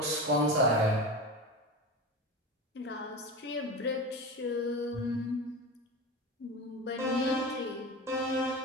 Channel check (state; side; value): normal; both; correlation 0.26